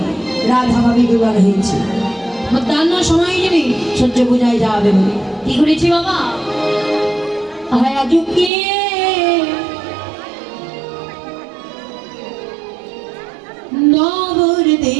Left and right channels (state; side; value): drops out; left; at 8.5 s